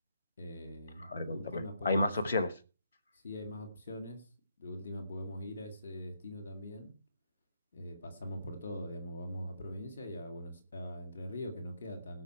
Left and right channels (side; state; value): both; inverted; correlation -0.76